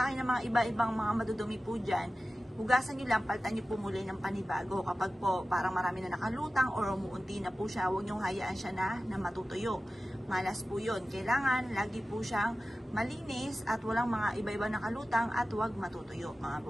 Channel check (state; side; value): normal; both; correlation 0.95